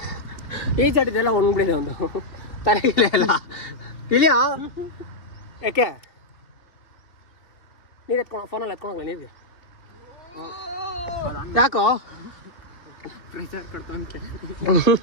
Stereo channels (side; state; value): right; late; 2.9 ms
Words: ಈ ಚಟಿದೆಲ್ಲ ಒಣಗ್ಬಿಡಿದೆ ಒಂದು ತಲೆಗಿಲ್ಲ ಎಲ್ಲ ಇಲ್ಲಿಯಾ. ಯಾಕೆ ನೀರು ಎತ್ಕೊಂಡು ಫೋನಲ್ಲಿ ಎತ್ಕೊಂಡೋಗ್ಲ ನೀರಿಗೆ? ಯಾಕೋ ಪ್ರೆಷರ್ ಕೊಡ್ತಂತೆ.